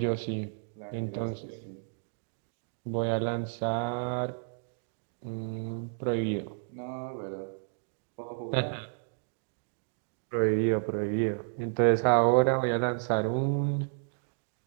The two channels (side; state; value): left; silent; digital silence